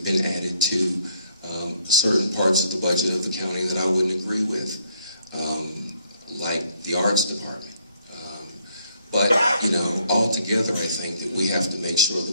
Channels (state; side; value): inverted; both; correlation -0.69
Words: been added to certain parts of the budget of the county that I wouldn't agree with, like the arts department. But, you know, altogether, I think that we have to make sure